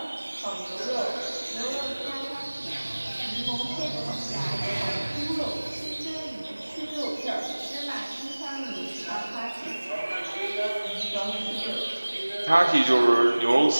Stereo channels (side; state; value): both; inverted; correlation -1.00